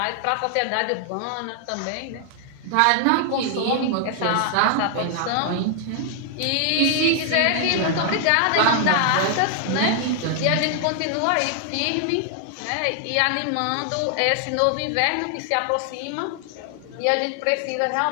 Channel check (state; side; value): different; both; correlation 0.00